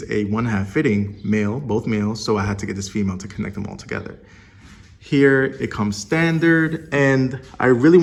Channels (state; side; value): identical; both; correlation 1.00